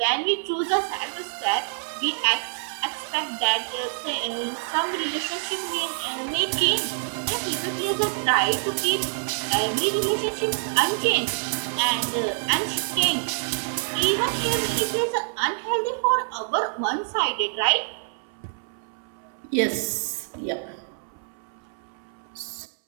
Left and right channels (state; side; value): silent; left; 59 dB below the other